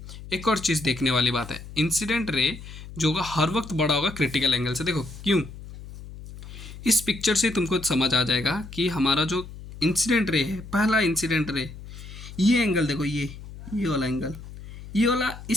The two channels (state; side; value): noise; left; hum, 14 dB below the sound